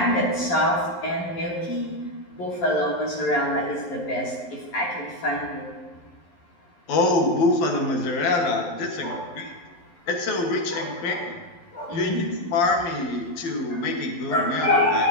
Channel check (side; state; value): right; late; 11 ms